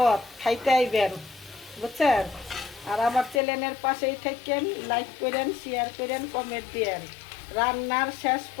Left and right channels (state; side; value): drops out; right; at 3.4 s